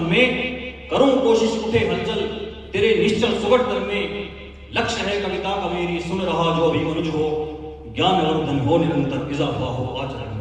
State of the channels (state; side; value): identical; both; correlation 1.00